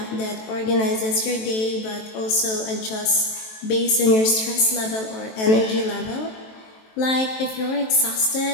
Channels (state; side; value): late; right; 23 ms